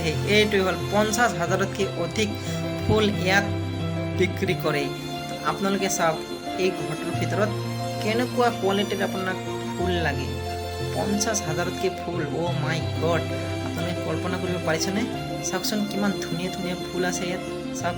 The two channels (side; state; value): both; identical; correlation 1.00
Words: এইটোৱে হ'ল 50,000তকৈ অধিক ফুল ইয়াত বিক্ৰী কৰে আপোনালোকে চাওক এই ঘৰটোৰ ভিতৰত কেনেকুৱা কোৱালিটিৰ আপোনাক ফুল লাগে 50,000তকৈ ফুল মাই গড আপোনালোকে কল্পনা কৰিব পাৰিছেনে চাওকচোন কিমান ধুনীয়া ধুনীয়া ফুল আছে ইয়াত চাওক